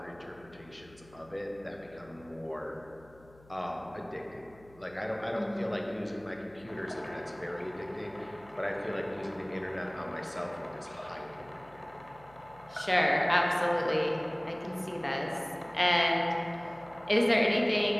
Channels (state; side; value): noise; left; hum, 25 dB below the sound